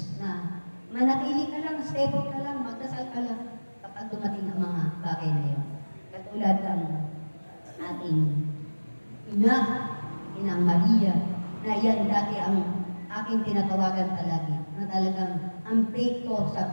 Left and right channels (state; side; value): inverted; both; correlation -1.00